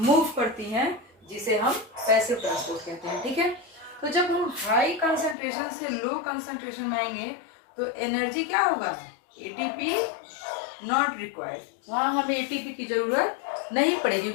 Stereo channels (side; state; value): right; drops out; at 5.4 s